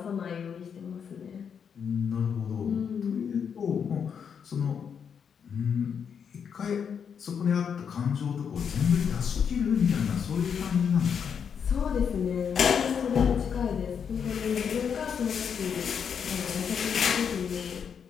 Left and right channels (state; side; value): quieter; right; 7.2 dB